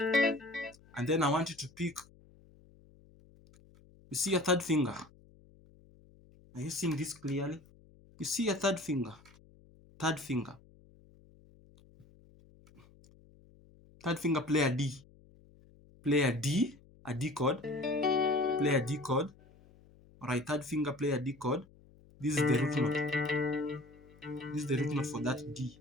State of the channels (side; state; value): left; noise; hum, 26 dB below the sound